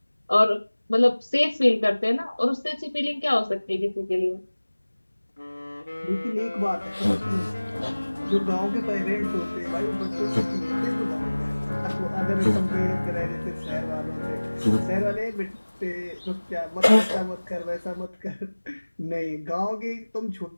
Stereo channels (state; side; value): inverted; both; correlation -1.00